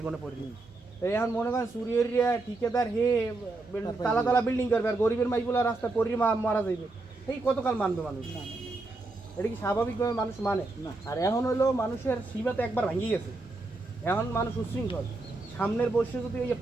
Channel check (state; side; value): quieter; left; 3.2 dB